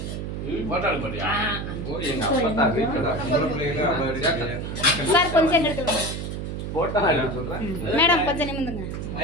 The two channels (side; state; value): right; noise; hum, 5 dB below the sound